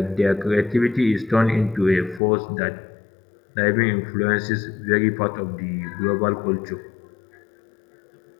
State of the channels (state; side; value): drops out; right; at 2.2 s